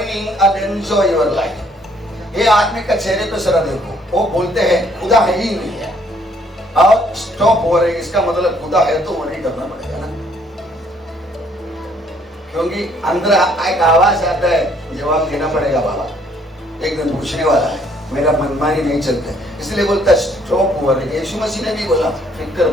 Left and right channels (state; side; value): normal; both; correlation 0.64